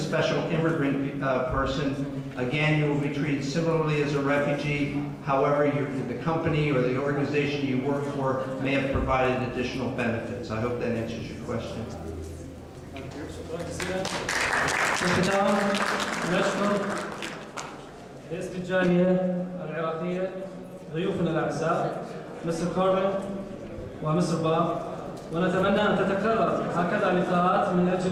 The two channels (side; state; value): both; identical; correlation 1.00